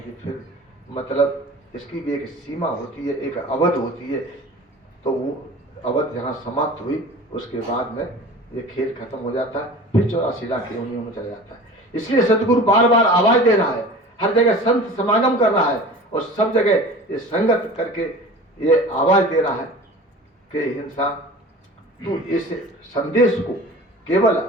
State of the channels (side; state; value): both; normal; correlation 0.39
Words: फिर मतलब इसकी भी एक सीमा होती है, एक अवध होती है। तो वो अवध जहाँ समाप्त हुई उसके बाद में ये खेल खत्म हो जाता है, फिर 84 लाख योनियों में चला जाता है। इसलिए सदगुरु बार बार आवाज दे रहा है, हर जगह संत समागम कर रहा है और सब जगह ये संगत करके ये आवाज दे रहा है कि इंसान तू इस संदेश को केवल